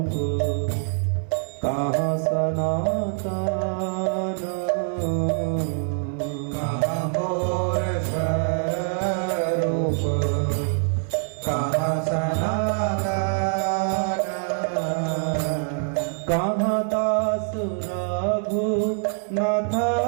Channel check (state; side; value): silent; left; digital silence